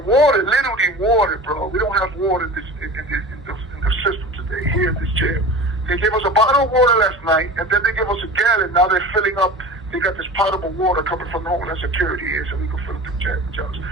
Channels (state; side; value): normal; both; correlation 0.35